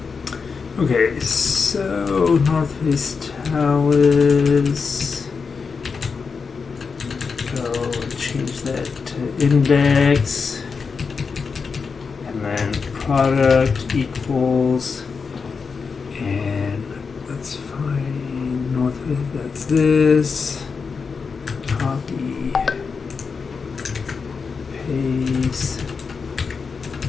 Okay, so North Face Talus. Go change that to index, and then product equals, and let's find North Face. That's this. Copy. paste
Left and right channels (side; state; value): right; quieter; 5.2 dB